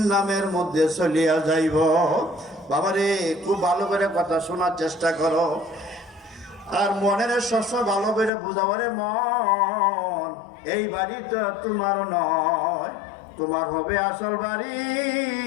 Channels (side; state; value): right; drops out; at 8.3 s